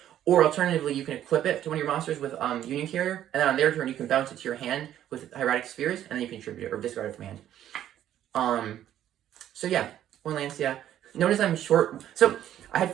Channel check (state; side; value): quieter; left; 11.5 dB